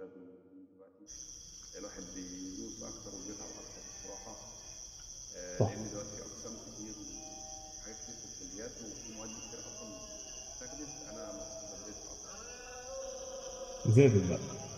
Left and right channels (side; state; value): both; identical; correlation 1.00